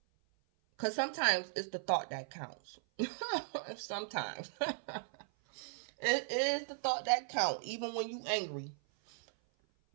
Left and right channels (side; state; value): left; silent; 53 dB below the other